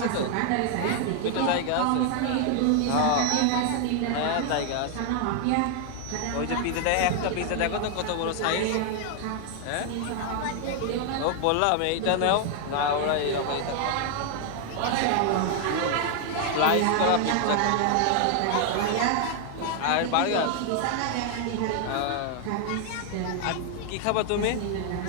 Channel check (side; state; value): both; different; correlation 0.00